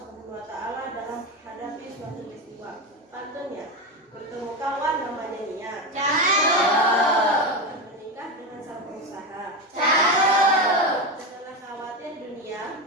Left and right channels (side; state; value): both; normal; correlation 0.16